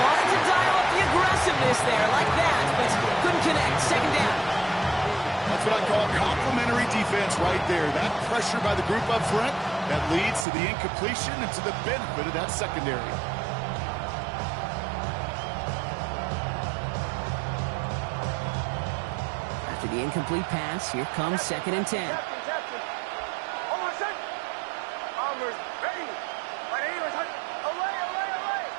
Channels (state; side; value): drops out; left; at 10.5 s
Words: to dial up the aggressiveness there like that, but couldn't connect. Second down. That's what I call complimentary defense right there. That pressure by the group up front, that leads to the incompletion and to the benefit of that secondary. After the incomplete pass, here comes 2nd and 10. Captain. Oh, my son. Bombers, ready. 180. Away.